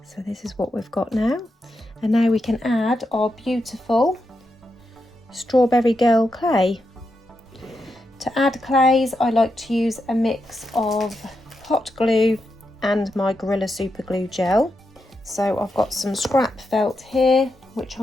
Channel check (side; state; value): both; normal; correlation 0.85